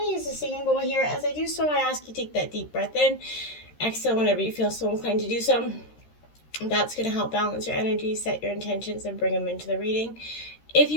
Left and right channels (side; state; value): right; late; 13 ms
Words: to use the singing bowl here. As I do so, I ask you to take that deep breath in. Exhale whenever you feel so inclined to do so. That's going to help balance your energy, set your intentions, and bring them into the reading. If